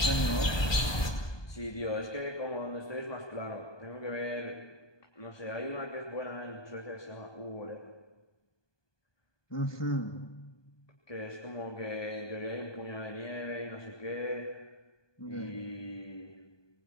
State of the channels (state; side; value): late; right; 1.2 ms